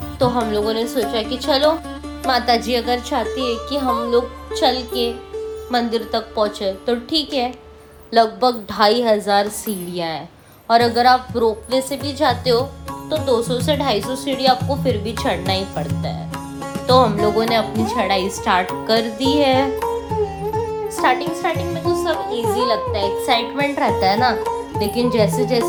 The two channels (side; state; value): both; identical; correlation 1.00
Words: तो हम लोगों ने सोचा कि चलो, माता जी अगर चाहती है कि हम लोग चल के मंदिर तक पहुंचे तो ठीक है। लगभग 2500 सीढ़ियाँ हैं, और अगर आप रोपवे से भी जाते हो तो 200 से 250 सीढ़ी आपको फिर भी चढ़ना ही पड़ता है। तो हम लोगों ने अपनी चढ़ाई स्टार्ट कर दी है। स्टार्टिंग में तो सब इजी लगता है, एक्साइटमेंट रहता है ना, लेकिन जैसे